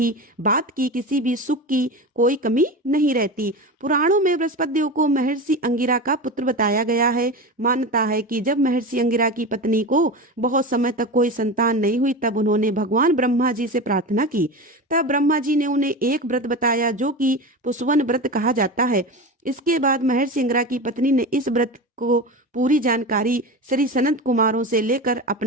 बात की, किसी भी सुख की कोई कमी नहीं रहती। पुराणों में बृहस्पति देव को महर्षि अंगिरा का पुत्र बताया गया है। मान्यता है कि जब महर्षि अंगिरा की पत्नी को बहुत समय तक कोई संतान नहीं हुई, तब उन्होंने भगवान ब्रह्मा जी से प्रार्थना की। तब ब्रह्मा जी ने उन्हें एक व्रत बताया, जो कि पुष्वन व्रत कहा जाता है। इसके बाद महर्षि अंगिरा की पत्नी ने इस व्रत को पूरी जानकारी श्री सनत कुमारों से लेकर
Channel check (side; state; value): both; normal; correlation 0.25